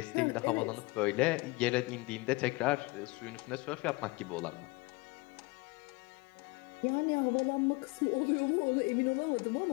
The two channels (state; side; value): quieter; right; 24.9 dB